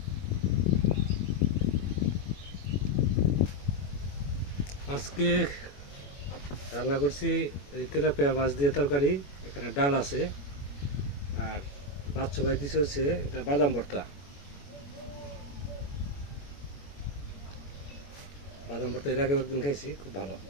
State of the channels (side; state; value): right; late; 21 ms